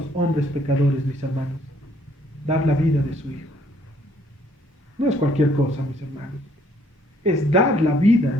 hombres pecadores, mis hermanos. Dar la vida de su Hijo. No es cualquier cosa, mis hermanos. Es dar la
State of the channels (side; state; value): both; normal; correlation 0.65